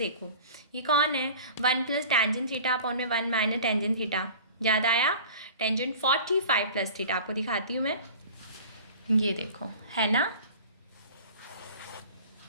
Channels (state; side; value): inverted; both; correlation -0.41